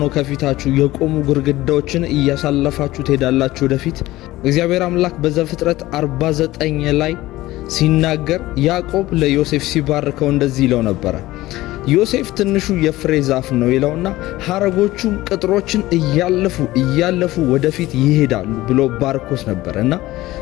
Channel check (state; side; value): quieter; right; 17.4 dB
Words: ከፊታችሁ የቆሙ ግድግዳዎችን እያሳለፋችሁ ትሄዳላችሁ ወደፊት። እግዚአብሔር አምላክ በዘፍጥረት 49 ላይ ሲናገር ያዕቆብ ለዮሴፍ ሲባርከው እንደዚህ ይለው ነበረ። ዮሴፍ ትንሹ የፍሬ ዛፍ ነው ይለውና ሐረጎቹም ቅጥሮችን እያለፉ ወደፊት ይሄዳሉ ብሎ ባርኮስ ነበርና